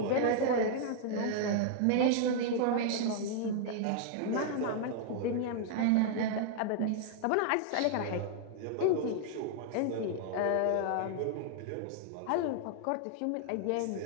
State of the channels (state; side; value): different; both; correlation -0.01